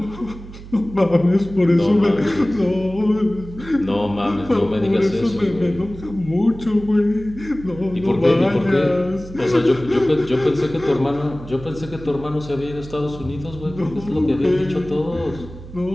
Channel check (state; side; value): noise; right; hum, 15 dB below the sound